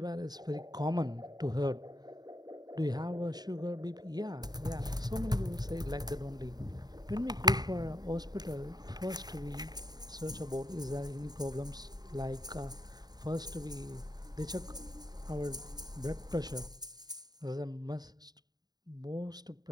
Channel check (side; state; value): left; late; 0.19 ms